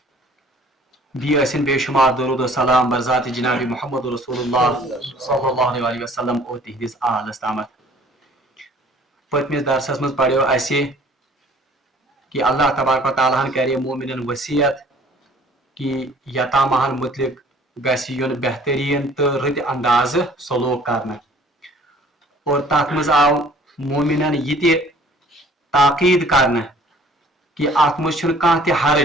بیسن بے شمار درود و سلام برذات جناب محمد رسول اللہ صلی اللہ علیہ وسلم اور تہندس آلس تامت. پتمس درسس مز پڑھو اسہ کہ اللہ تبارک و تعالیٰ کرے مومنن وصیت کہ یتامہن متعلق گژھِ یُن بہترین تو رٕتہِ انداز سلوک کرنا اور تتھ مز آو مومنن یہ تہِ تاکید کرنا کہ ات مز چھُنہٕ کانٛہہ تہِ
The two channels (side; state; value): both; normal; correlation 0.54